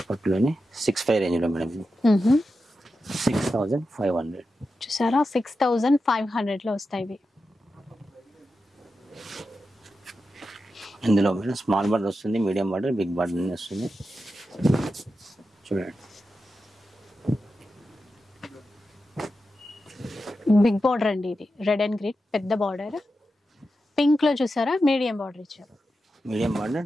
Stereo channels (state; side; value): normal; both; correlation 0.90